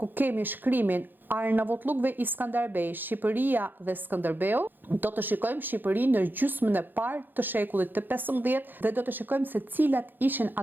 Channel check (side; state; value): left; late; 0.091 ms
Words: kemi shkrimin Arnavutlluk dhe Iskanderbej, Shqipëria dhe Skënderbeu, do të shikojmë Shqipërinë në gjysmën e parë të shekullit të 15 dhe do të shikojmë se cilat ishin